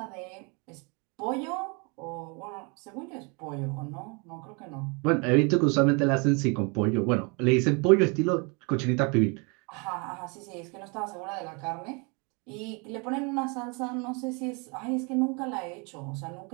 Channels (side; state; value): left; quieter; 31.8 dB